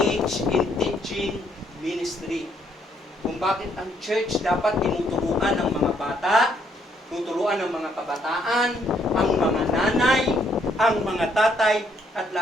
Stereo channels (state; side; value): normal; both; correlation 0.70